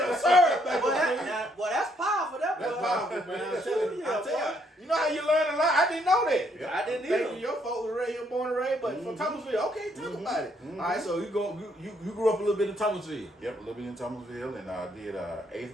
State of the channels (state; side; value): normal; both; correlation 0.71